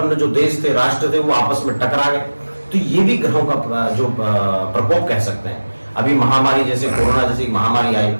जो देश थे, राष्ट्र थे, वो आपस में टकरा गए, तो ये भी ग्रहों का जो प्रकोप कह सकते हैं। अभी महामारी जैसे कोरोना जैसी महामारी आई,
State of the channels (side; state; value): both; inverted; correlation -1.00